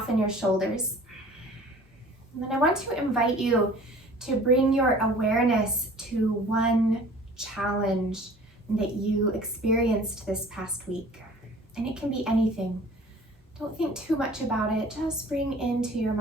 your shoulders. And then I want to invite you to bring your awareness to one challenge that you experienced this past week. And it can be anything. Don't think too much about it. Just bring into your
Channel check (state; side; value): normal; both; correlation 0.47